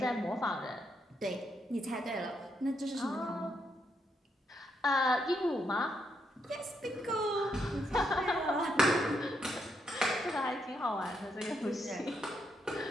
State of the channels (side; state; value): both; normal; correlation 0.79